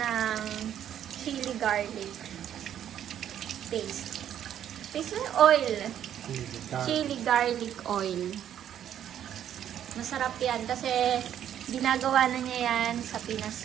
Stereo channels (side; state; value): left; quieter; 10.2 dB